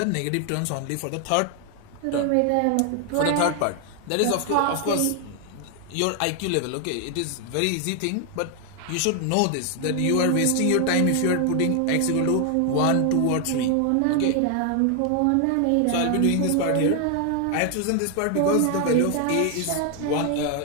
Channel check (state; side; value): different; both; correlation 0.00